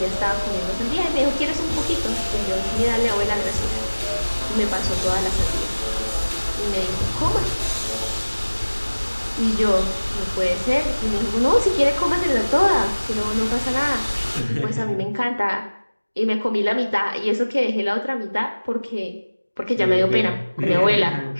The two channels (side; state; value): both; inverted; correlation -1.00